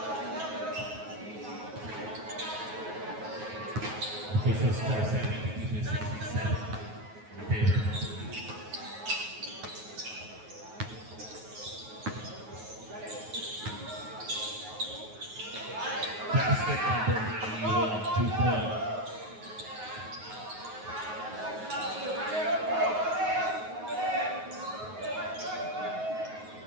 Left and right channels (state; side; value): late; left; 9.4 ms